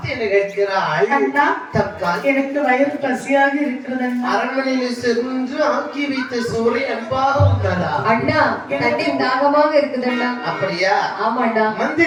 என்ன கேட்கிறாள், அண்ணா, தற்கால் எனக்கு வயிறு பசியாக இருக்கிறது அண்ணா. அரண்மனையில் சென்று ஆக்கி வைத்த சோறை அன்பாக உண்டதா? அண்ணா, தண்ணீர் தாகமாக இருக்குது அண்ணா. அப்படியா? ஆமாண்டா.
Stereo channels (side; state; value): both; identical; correlation 1.00